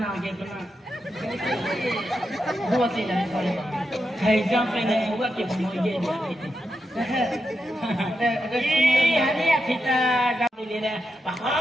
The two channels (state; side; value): normal; both; correlation 0.86